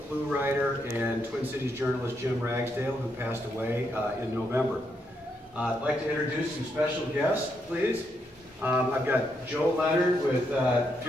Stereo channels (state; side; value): normal; both; correlation 0.79